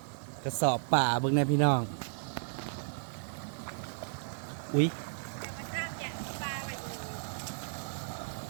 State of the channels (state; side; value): silent; left; digital silence